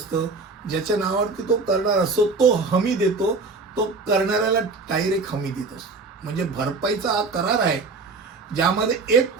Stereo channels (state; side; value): quieter; left; 4.0 dB